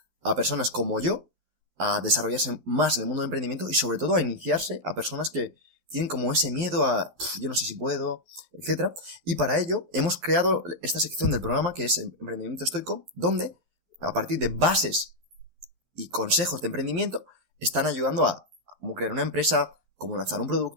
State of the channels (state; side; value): late; left; 12 ms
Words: a personas como yo a desarrollarse más en el mundo del emprendimiento y sobre todo a iniciarse a personas que tienen como ese miedo a yo no sé si puedo, etcétera. Y para ello hemos creado esta sección del programa que es Emprendimiento Estoico, donde a partir de bases y consejos de emprendimiento están ayudando a cómo crear una empresa, cómo lanzar un